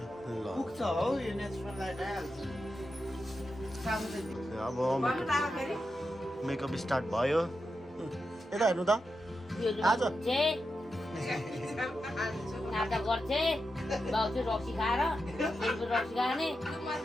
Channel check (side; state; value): both; normal; correlation 0.89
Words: अब मेकअप स्टार्ट भयो यता हेर्नु त आज